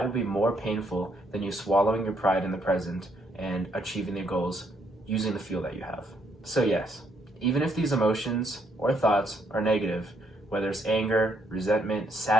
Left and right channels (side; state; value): both; normal; correlation 0.72